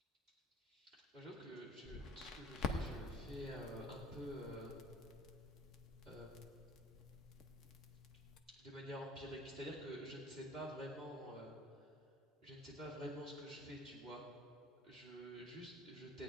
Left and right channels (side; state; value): both; normal; correlation 0.48